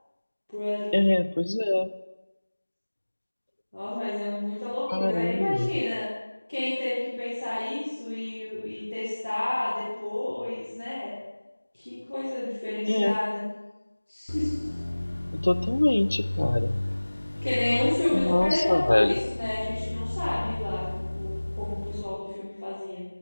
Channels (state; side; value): inverted; both; correlation -1.00